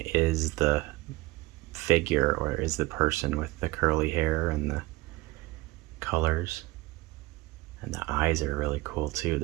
is the figure, or is the person with the curly hair and the colors. And the eyes are really cool too.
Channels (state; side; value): quieter; left; 21.1 dB